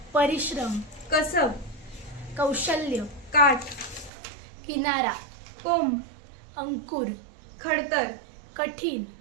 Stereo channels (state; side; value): drops out; left; at 4.1 s